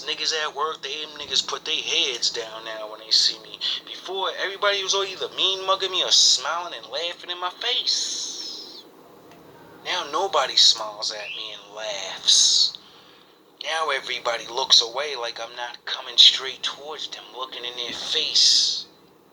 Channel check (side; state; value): both; identical; correlation 1.00